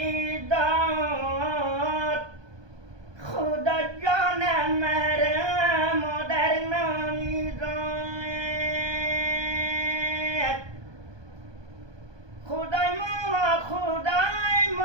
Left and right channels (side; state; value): left; late; 1.2 ms